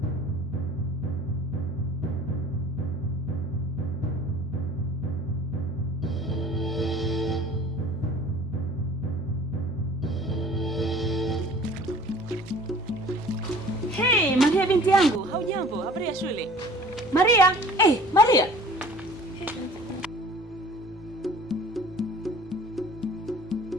Hey, Maria binti yangu, haujambo? Habari ya shule? Maria, Maria.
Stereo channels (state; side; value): normal; both; correlation 0.48